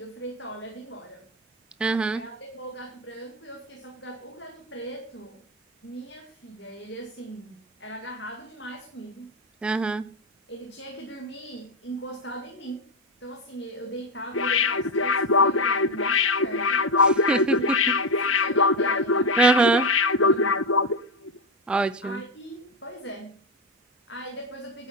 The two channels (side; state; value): both; normal; correlation 0.11